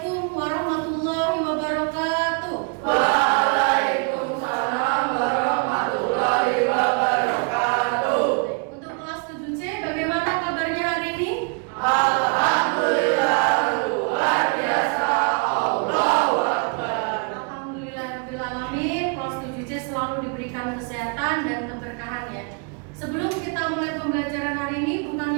warahmatullahi wabarakatuh. Waalaikumsalam warahmatullahi wabarakatuh. Untuk kelas 7C, bagaimana kabarnya hari ini? Alhamdulillah luar biasa. Allahu Akbar. Alhamdulillah alamin. Kelas 7C selalu diberikan kesehatan dan keberkahan ya. Sebelum kita mulai pembelajaran hari ini,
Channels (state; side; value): quieter; left; 35.7 dB